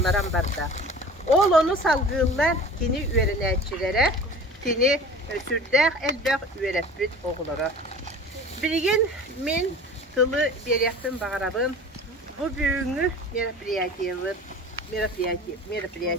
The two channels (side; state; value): both; normal; correlation 0.40